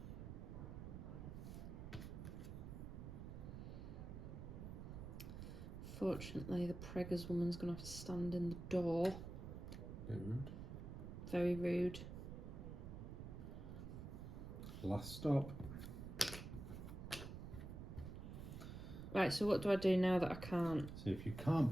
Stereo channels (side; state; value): right; noise; rumble, 8 dB below the sound